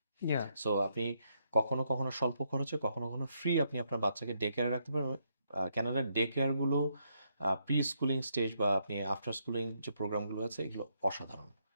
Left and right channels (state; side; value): inverted; both; correlation -0.77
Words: সো আপনি কখনো কখনো স্বল্প খরচে, কখনো কখনো ফ্রি আপনি আপনার বাচ্চাকে ডে কেয়ারে রাখতে পারেন। ক্যানাডার ডে কেয়ারগুলো প্রি স্কুলিং স্টেজ বা আপনি আফটার স্কুলিং যে প্রোগ্রামগুলো আছে, এগুলো অসাধারণ।